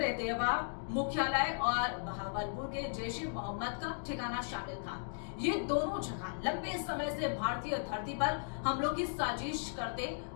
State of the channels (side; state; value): right; silent; digital silence